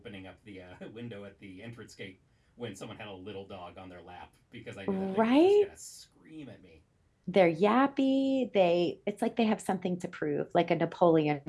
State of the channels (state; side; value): identical; both; correlation 1.00